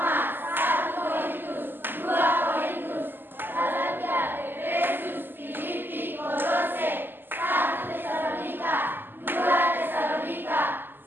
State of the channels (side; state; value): left; late; 0.094 ms